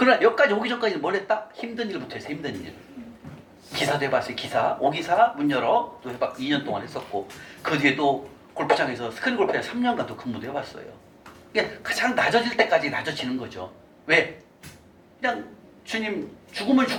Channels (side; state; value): both; identical; correlation 1.00